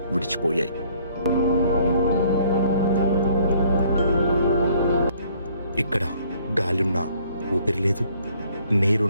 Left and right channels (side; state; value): both; inverted; correlation -0.61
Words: విడిచిపోయాయి. ఇక్కడ గాలున్నా ఊపిరి లేదు,